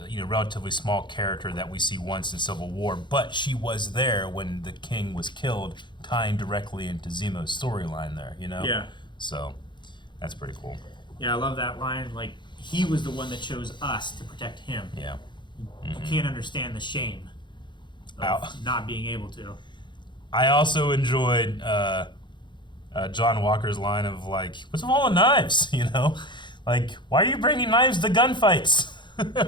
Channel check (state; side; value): late; right; 0.22 ms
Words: relatively small character that we see once in Civil War, but she was there when the king was killed, tying directly into Zemo's storyline there, Yeah. So, that's pretty cool. Yeah, I love that line. Like, he was the one that chose us to protect him. Yeah. You can't understand the shame of not being able to. I also enjoyed John Walker's line of, like, what's with all the knives, Like, why are you bringing knives to gunfights?